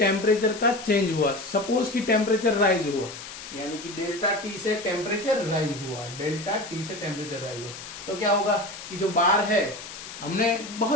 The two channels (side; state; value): left; noise; hiss, 12 dB below the sound